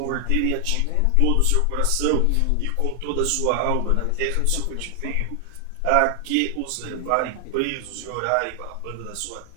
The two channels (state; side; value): different; both; correlation 0.00